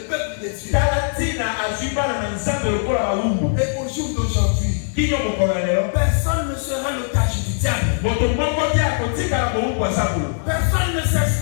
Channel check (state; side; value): silent; right; 65 dB below the other